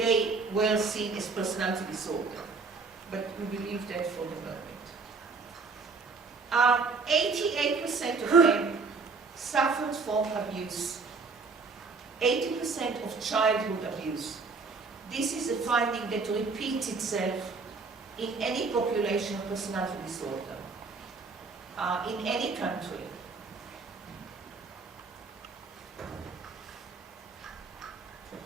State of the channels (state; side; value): quieter; left; 4.3 dB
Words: were seen as personality disorder? But we believe that for the moment. 88% of them suffered from abuse. 80% of childhood abuse. This is a finding that repeats itself in any population of personality disorder, in any country.